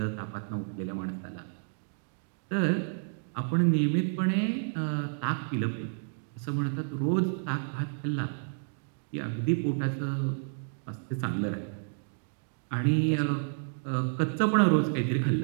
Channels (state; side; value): silent; left; digital silence